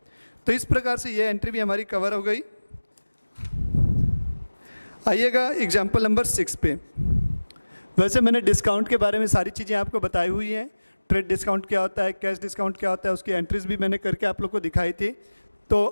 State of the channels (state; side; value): inverted; both; correlation -1.00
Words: तो इस प्रकार से ये एंट्री भी हमारी कवर हो गई। आइएगा एग्जाम्पल नंबर 6 पे। वैसे मैंने डिस्काउंट के बारे में सारी चीज़ें आपको बताई हुई हैं, ट्रेड डिस्काउंट क्या होता है, कैश डिस्काउंट क्या होता है, उसकी एंट्रीज भी मैंने करके आप लोग को दिखाई थी।